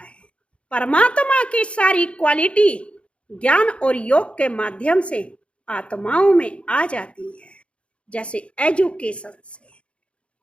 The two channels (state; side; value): late; right; 0.060 ms